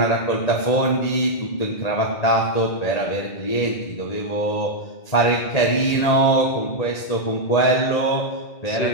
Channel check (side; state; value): right; late; 1.8 ms